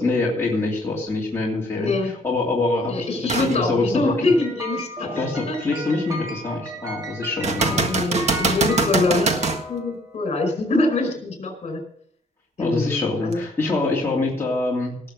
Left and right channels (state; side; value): normal; both; correlation 0.61